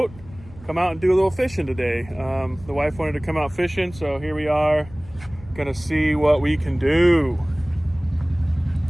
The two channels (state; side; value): noise; left; rumble, 20 dB below the sound